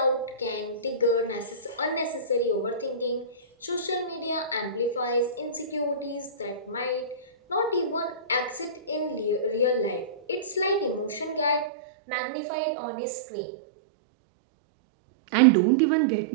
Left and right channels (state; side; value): drops out; left; at 11.7 s